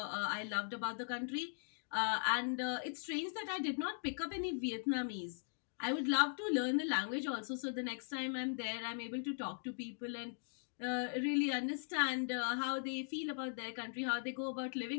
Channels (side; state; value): right; silent; digital silence